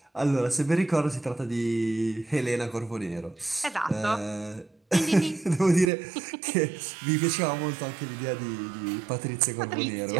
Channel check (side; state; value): left; drops out; at 5.9 s